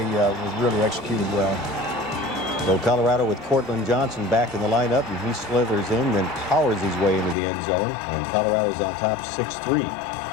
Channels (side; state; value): right; drops out; at 7.4 s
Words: was really executed well. So Colorado with Cortland Johnson back in the lineup, and he slithers in, then powers his way into the end zone, and Colorado's on top 6-3.